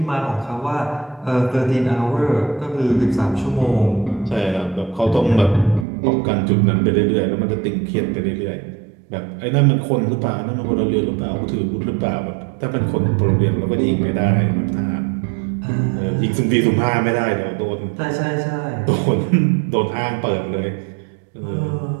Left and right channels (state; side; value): drops out; left; at 5.9 s